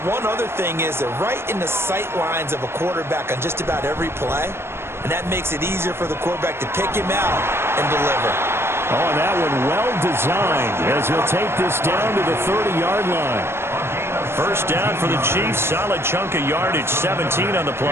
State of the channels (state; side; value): late; left; 0.12 ms